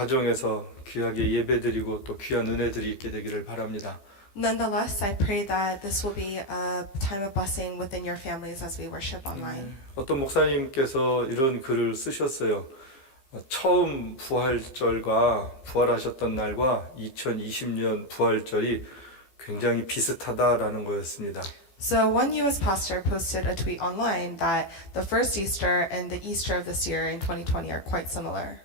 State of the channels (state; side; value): late; right; 15 ms